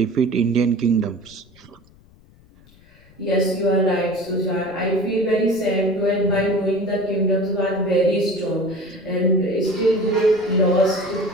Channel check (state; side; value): noise; left; rumble, 28 dB below the sound